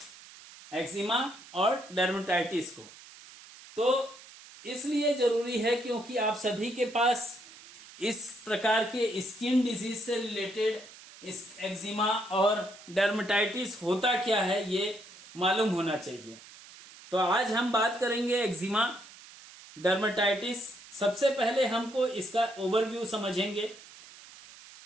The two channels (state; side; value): noise; right; hiss, 19 dB below the sound